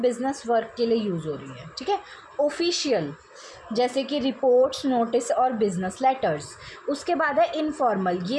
वर्क के लिए यूज़ हो रही है। ठीक है, ऑफिशियल जैसे कि रिपोर्ट्स, नोटिस और बिजनेस लेटर्स। उसके बाद है इनफॉर्मल,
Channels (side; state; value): both; identical; correlation 1.00